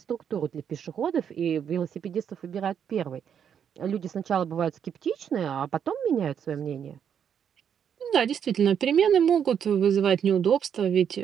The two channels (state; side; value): quieter; left; 8.2 dB